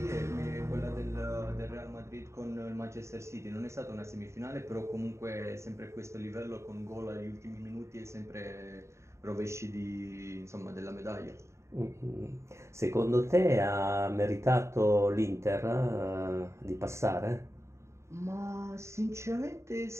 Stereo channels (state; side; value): late; left; 0.14 ms